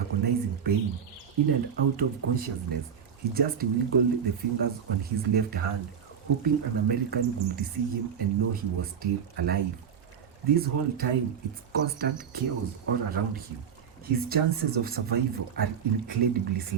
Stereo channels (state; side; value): quieter; left; 7.8 dB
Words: pain, in and out of consciousness, he just wiggled the fingers on his left hand, hoping an American would see him and know he was still alive. This whole time, it's constant chaos all around him. His chances of survival are incredibly